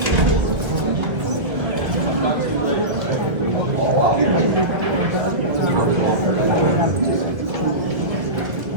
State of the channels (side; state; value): left; late; 1.8 ms